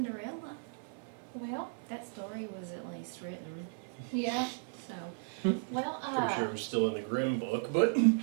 Well, That story was at least written, yeah. so. Well, Pretty sure it was still in the Grimm book, but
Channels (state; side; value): silent; left; 54 dB below the other